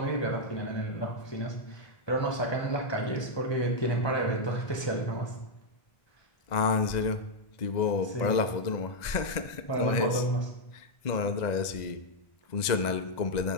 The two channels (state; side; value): late; right; 1.9 ms